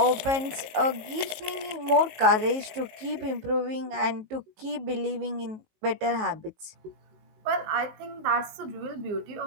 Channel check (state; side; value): late; left; 19 ms